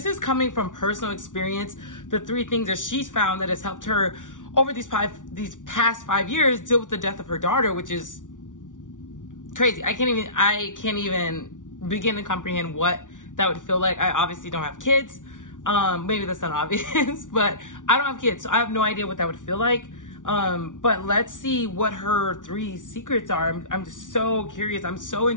is coming from personal experience. The 3 things that she's found that has helped her over these past 5 years deal with the death of her daughter, which is crazy. I can't even begin to comprehend what that would feel like. I obviously don't have kids. Maybe that's not obvious, but I don't have kids, so I have no idea what that would feel like. But let's see what her 3 secrets are. I'm just so curious. I'm so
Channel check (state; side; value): late; right; 0.87 ms